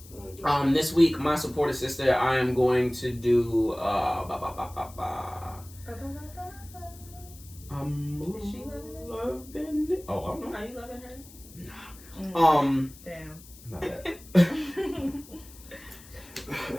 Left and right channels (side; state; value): left; noise; hiss, 20 dB below the sound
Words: This week, my supporter sister, I am going to do Is she loving it. Oh, I don't know. Are you loving her? Damn. My bad.